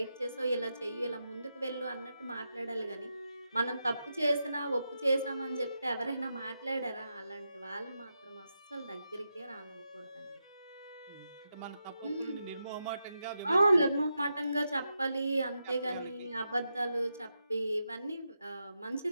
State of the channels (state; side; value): inverted; both; correlation -0.86